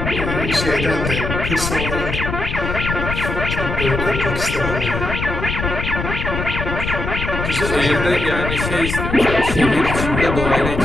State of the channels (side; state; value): left; noise; rumble, 4 dB below the sound